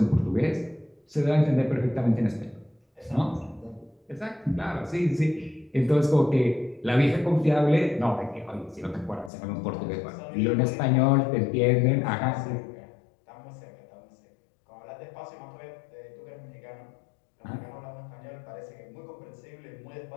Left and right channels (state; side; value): drops out; right; at 9.3 s